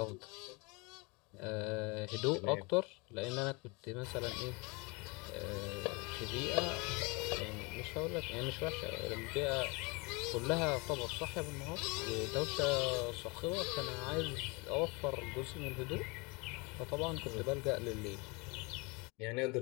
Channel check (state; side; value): quieter; right; 28.2 dB